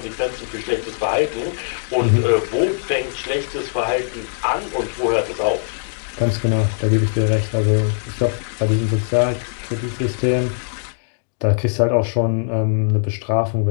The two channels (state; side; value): silent; right; digital silence